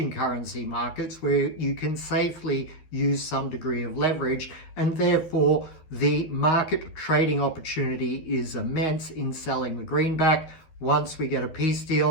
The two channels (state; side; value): late; right; 12 ms